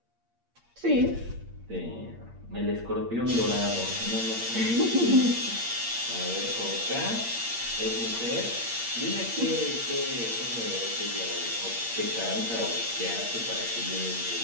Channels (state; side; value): late; left; 8.6 ms